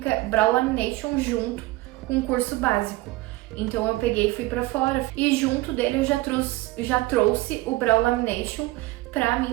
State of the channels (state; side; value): quieter; left; 19.7 dB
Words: Brow Lamination junto com um curso básico. Então eu peguei e fui pra fora e junto dele eu já trouxe o Brow Lamination para